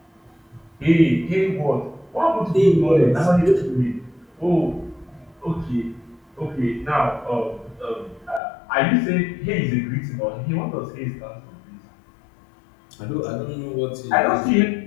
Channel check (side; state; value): right; drops out; at 8.4 s